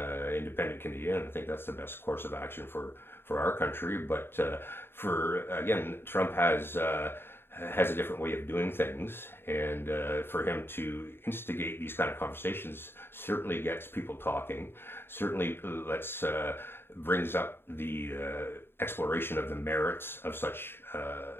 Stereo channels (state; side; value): late; right; 0.11 ms